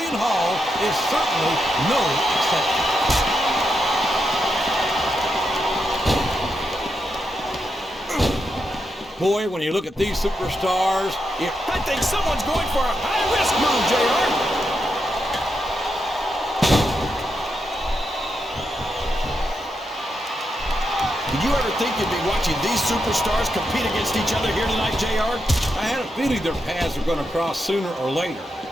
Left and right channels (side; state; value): both; normal; correlation 0.84